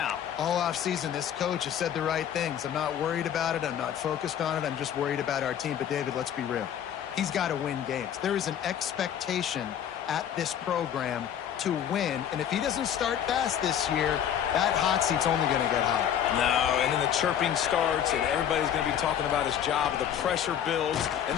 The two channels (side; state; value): right; quieter; 9.5 dB